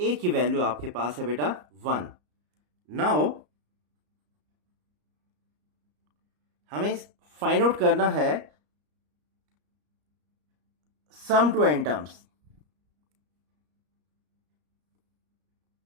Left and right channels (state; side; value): late; left; 34 ms